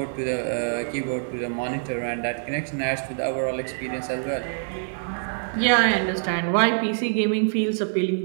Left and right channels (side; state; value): left; silent; 55 dB below the other